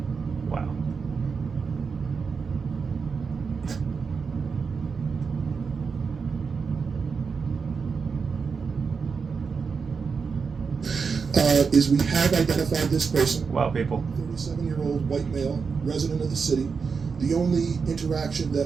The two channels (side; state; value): left; quieter; 5.4 dB